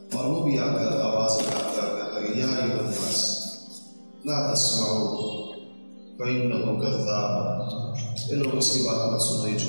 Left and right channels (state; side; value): inverted; both; correlation -1.00